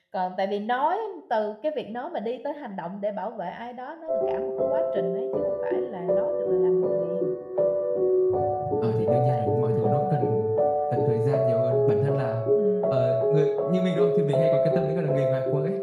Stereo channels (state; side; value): identical; both; correlation 1.00